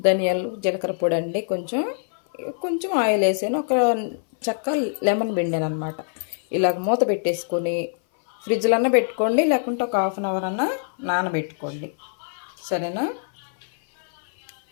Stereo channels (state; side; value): silent; right; 59 dB below the other